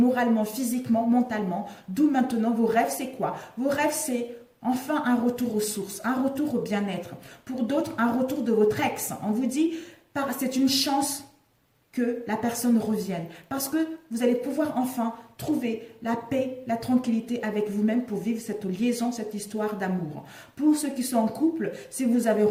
physiquement, mentalement. D'où maintenant, vos rêves, c'est quoi? Vos rêves, c'est enfin un retour aux sources, un retour au bien-être. Pour d'autres, un retour de votre ex. On vous dit, c'est une chance que la personne revienne. Parce que vous allez pouvoir enfin trouver la paix, la tranquillité avec vous-même pour vivre cette liaison, cette histoire d'amour. Pour ceux qui sont en couple, si vous avez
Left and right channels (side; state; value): both; identical; correlation 1.00